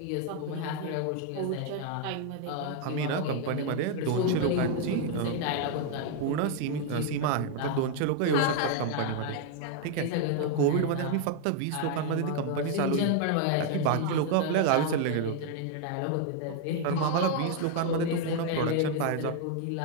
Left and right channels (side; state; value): both; different; correlation 0.00